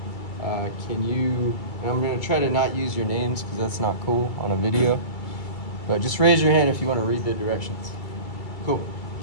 can you, and I'm going to try to not use your names because that's not cool on a video. But just raise your hand if you want to read the directions. Cool.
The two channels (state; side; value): late; right; 2.3 ms